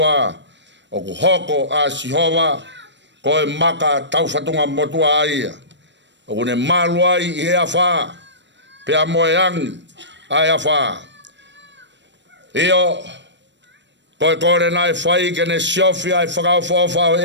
o ku hoko a sihova koe maka tauwhatunga motua aia. O ku ne maluai i he awha pea moe angi ai awha. Io koe kore nai whai kene siofi ai whakauwhawha o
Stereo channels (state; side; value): late; left; 0.53 ms